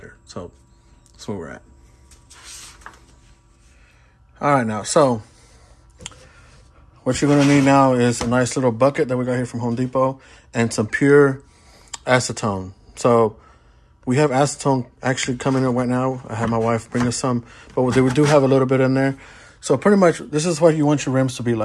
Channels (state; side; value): identical; both; correlation 1.00